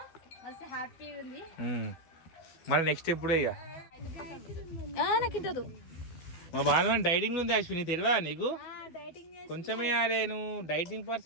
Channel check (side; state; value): right; late; 12 ms